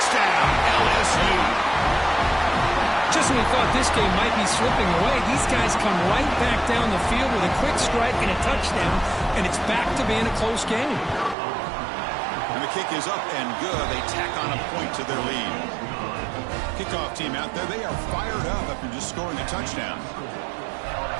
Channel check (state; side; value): drops out; left; at 11.4 s